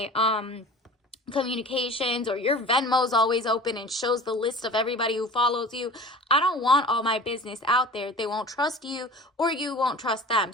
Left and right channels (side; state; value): both; normal; correlation 0.40